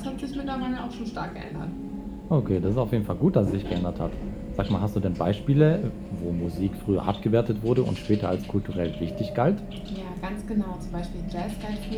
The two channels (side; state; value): both; identical; correlation 1.00